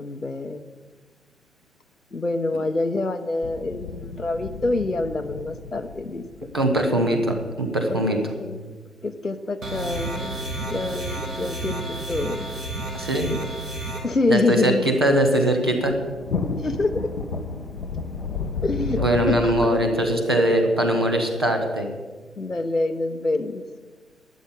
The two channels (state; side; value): normal; both; correlation 0.61